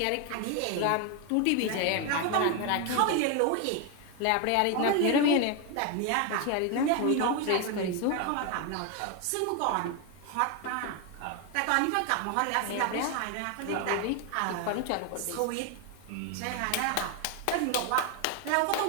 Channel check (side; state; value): both; different; correlation 0.01